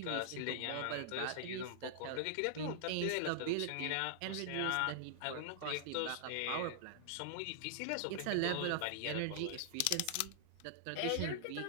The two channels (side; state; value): both; different; correlation -0.01